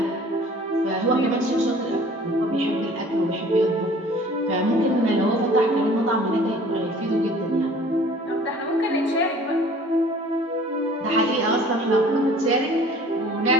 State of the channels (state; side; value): normal; both; correlation 0.50